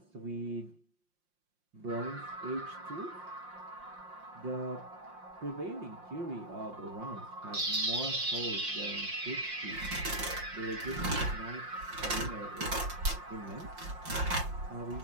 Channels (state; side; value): late; left; 5.6 ms